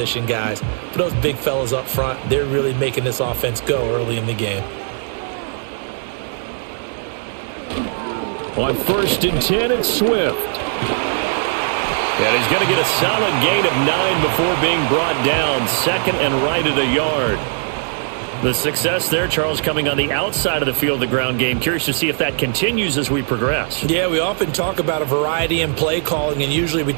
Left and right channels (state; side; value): silent; left; digital silence